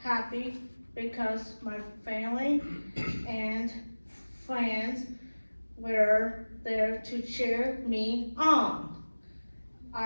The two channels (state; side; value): inverted; both; correlation -1.00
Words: happy because my family and friends were there to cheer me on.